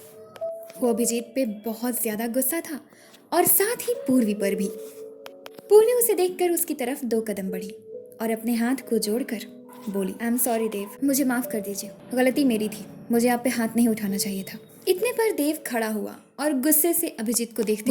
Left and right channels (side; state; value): both; identical; correlation 1.00